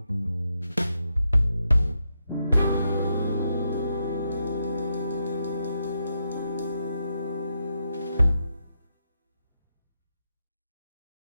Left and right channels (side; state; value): both; inverted; correlation -0.83